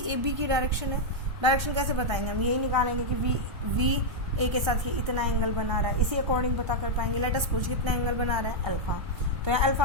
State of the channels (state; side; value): late; left; 1.3 ms